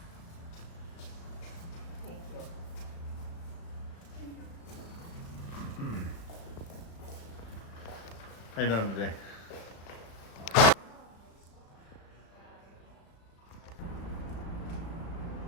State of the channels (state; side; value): late; right; 35 ms